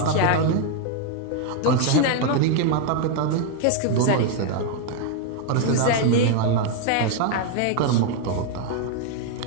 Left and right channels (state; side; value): different; both; correlation 0.00